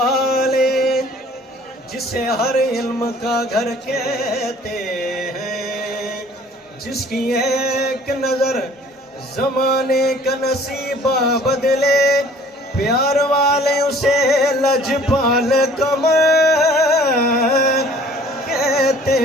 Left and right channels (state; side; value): normal; both; correlation 0.52